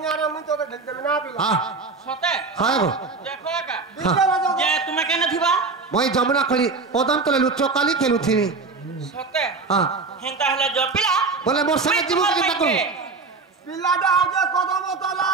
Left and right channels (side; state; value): left; quieter; 4.2 dB